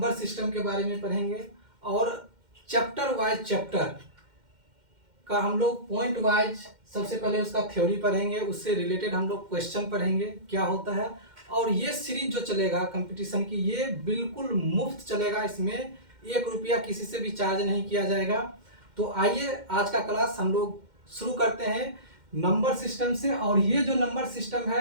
सिस्टम के बारे में पढ़ेंगे और चैप्टर वाइज चैप्टर का हम लोग पॉइंट वाइज सबसे पहले उसका थ्योरी पढ़ेंगे, उससे रिलेटेड हम लोग क्वेश्चन पढ़ेंगे क्या होता है। और ये सीरीज जो चलेगा कंपटीशन की, ये बिल्कुल मुफ्त चलेगा, इसमें 1 रुपया किसी से भी चार्ज नहीं किया जाएगा। तो आइए आज का क्लास हम लोग शुरू करते हैं नंबर सिस्टम से। और ये जो नंबर सिस्टम है,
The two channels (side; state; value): left; late; 2.1 ms